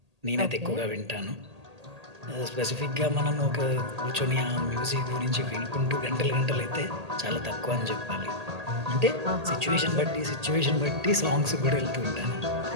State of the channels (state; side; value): late; left; 1.8 ms